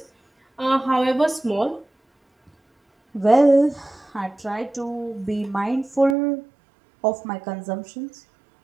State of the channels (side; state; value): left; drops out; at 6.2 s